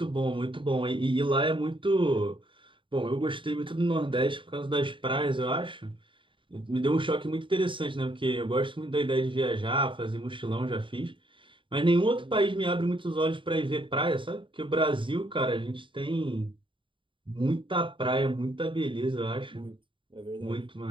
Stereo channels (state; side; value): late; left; 0.24 ms